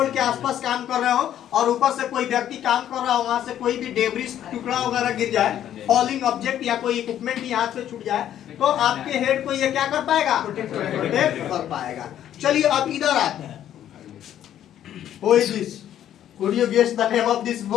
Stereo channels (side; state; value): right; quieter; 11.0 dB